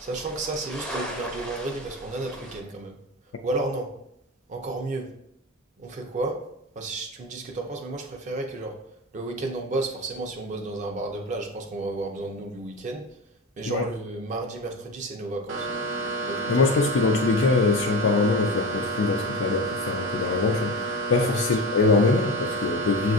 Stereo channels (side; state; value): both; normal; correlation 0.25